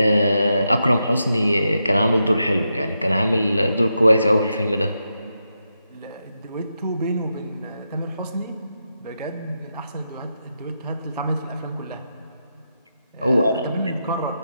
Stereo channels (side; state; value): both; inverted; correlation -0.86